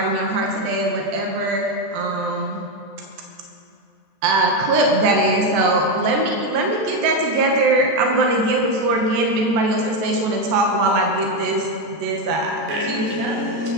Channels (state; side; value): late; left; 13 ms